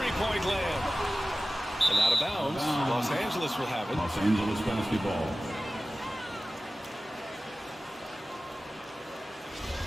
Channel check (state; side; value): normal; both; correlation 0.96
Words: land. And out of bounds. Los Angeles will have it. Los Angeles basketball.